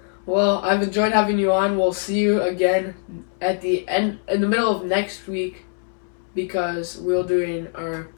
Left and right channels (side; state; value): right; silent; 57 dB below the other